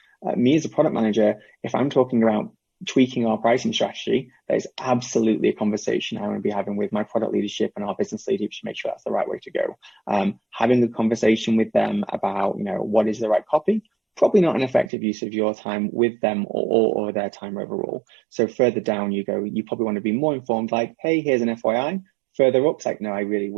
Me as a product manager, if I'm talking about tweaking our pricing strategy, that is absolutely a conversation I want to be having with my product leadership and our business leadership to make sure that's the right way to go. Having a conversation with them about, what is the right copy, probably not an effective use of your time with them or their time overall. So further down you go, you probably want to be more informed, like, hey, here's an FYI. Further up, it's like, no, I really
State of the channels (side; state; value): left; drops out; at 14.9 s